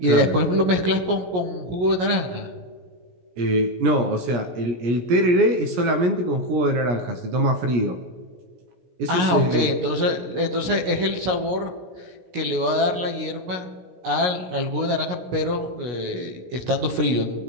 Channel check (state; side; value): late; left; 16 ms